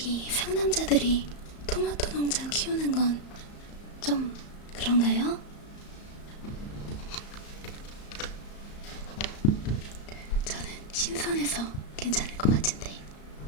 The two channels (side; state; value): right; late; 34 ms